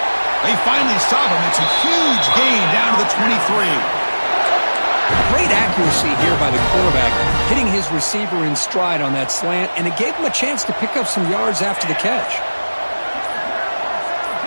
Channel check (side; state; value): both; inverted; correlation -1.00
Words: They finally stop him. It's a huge gain down to the 23. Great accuracy here by the quarterback, hitting his receiver in stride on that slant, and it gave him a chance to pick up some yards after the catch.